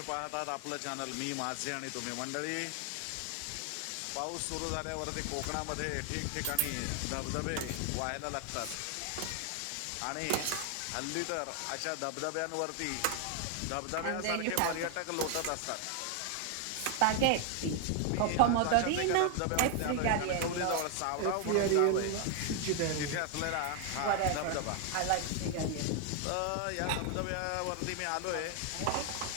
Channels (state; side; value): different; both; correlation 0.01